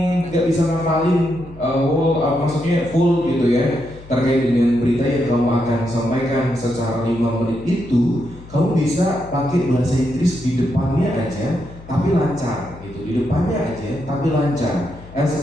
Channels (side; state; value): left; noise; hum, 18 dB below the sound